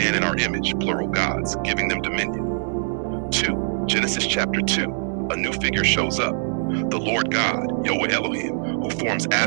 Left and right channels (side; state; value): left; silent; digital silence